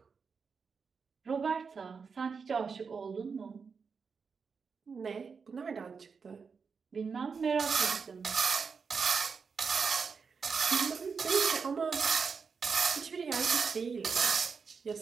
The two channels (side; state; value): left; quieter; 5.5 dB